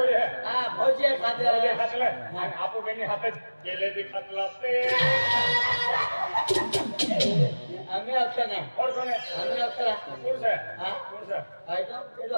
है हां भोजे खातला आणि आपो बेनी हातात केले भी खातला ते हमें अक्षर नहीं और कौन है हमें अक्षर कौन सा हां कौन सा है तो ये तो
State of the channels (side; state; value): both; inverted; correlation -1.00